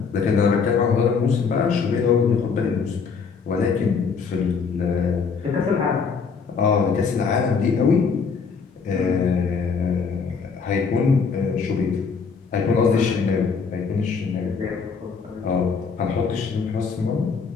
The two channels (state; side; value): quieter; right; 5.5 dB